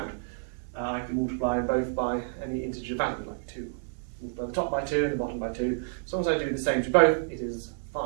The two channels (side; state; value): left; silent; 58 dB below the other